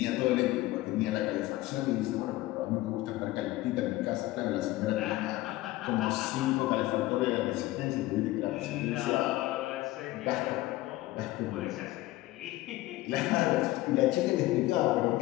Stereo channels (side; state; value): right; quieter; 17.5 dB